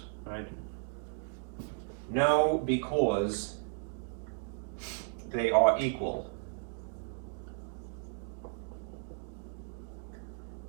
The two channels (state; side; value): silent; left; 54 dB below the other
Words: right? No, because they are equal.